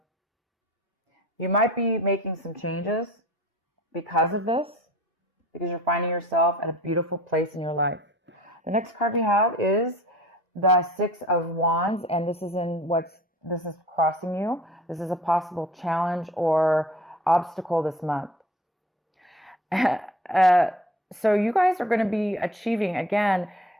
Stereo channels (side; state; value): both; normal; correlation 0.46